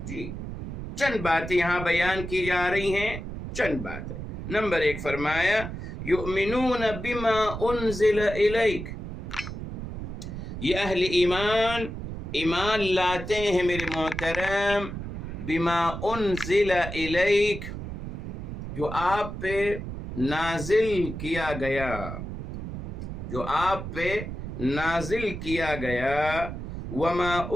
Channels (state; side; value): noise; right; rumble, 7 dB below the sound